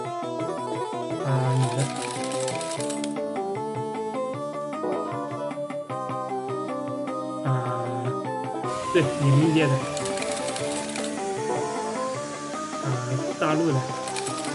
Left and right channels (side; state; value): both; identical; correlation 1.00